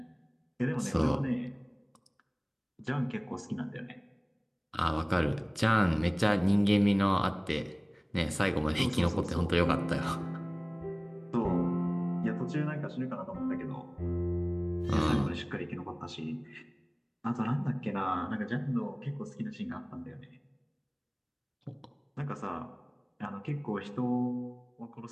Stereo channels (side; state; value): both; identical; correlation 1.00